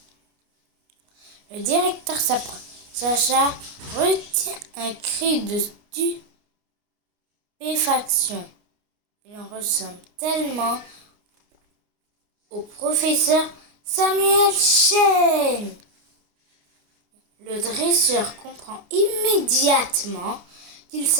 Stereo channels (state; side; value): late; left; 29 ms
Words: Le directeur s'approche. Sacha retient un cri de stupéfaction. Il en ressemble tellement au professeur Samuel Chen. Le dresseur comprend immédiatement qu'il